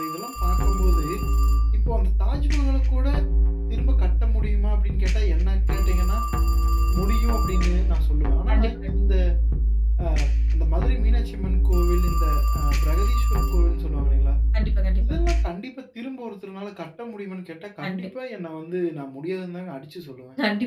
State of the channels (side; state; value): both; identical; correlation 1.00